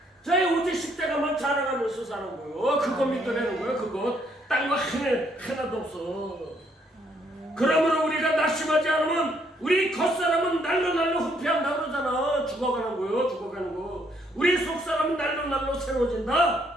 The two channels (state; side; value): normal; both; correlation 0.70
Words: 저희 오직 십자가만 자랑하면서 사는 거예요. 그거 믿어내는 거예요. 그거 딴 거 하나도 없어. 그러므로 우리가 낙심하지 않으면 우리 겉사람은 날로 후패한다